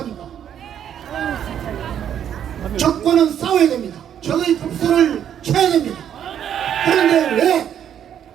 적과는 싸워야 됩니다. 적의 급소를 쳐야 됩니다. 그런데 왜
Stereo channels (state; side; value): quieter; left; 9.5 dB